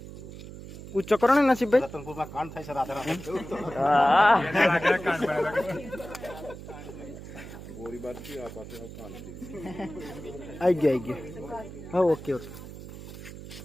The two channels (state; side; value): noise; right; hum, 13 dB below the sound